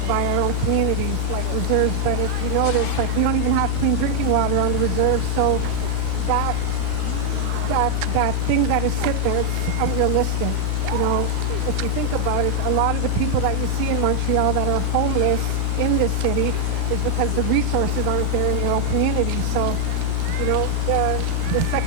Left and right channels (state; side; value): different; both; correlation 0.00